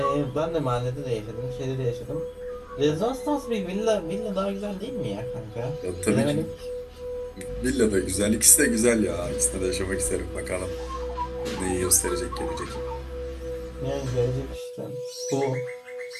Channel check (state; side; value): identical; both; correlation 1.00